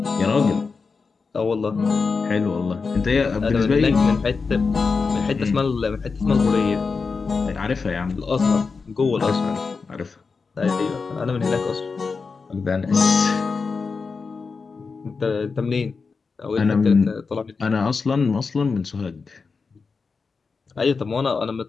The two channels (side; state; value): right; quieter; 4.8 dB